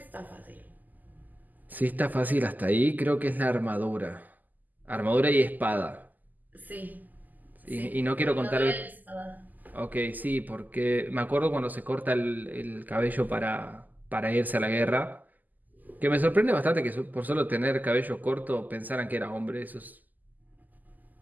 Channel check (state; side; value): late; left; 0.083 ms